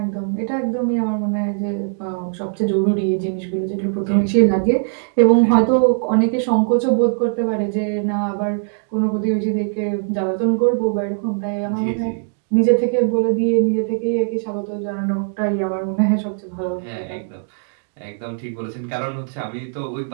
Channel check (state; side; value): silent; left; digital silence